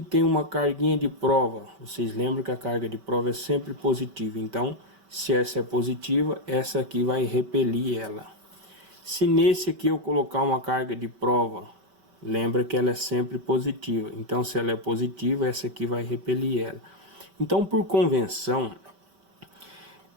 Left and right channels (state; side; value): late; left; 5.2 ms